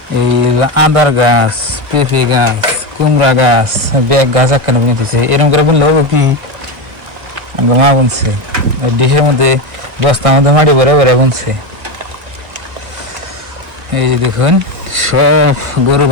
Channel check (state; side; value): late; left; 1.5 ms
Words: এই আদার গাছ, পেঁপে গাছ, কুমড়া গাছ, ব্যাগ গাছ একখানে বুনে দিচ্ছে। এরকম করে বুনলে হবো কি, আঙ্গ মা বুনছে দেহের মধ্যে, বস্তার মধ্যে মাটি ভরে ভরে বুনছে। এই যে দেখুন সব গরু